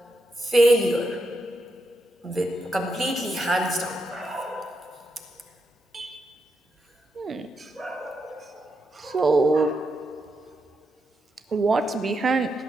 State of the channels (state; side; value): normal; both; correlation 0.84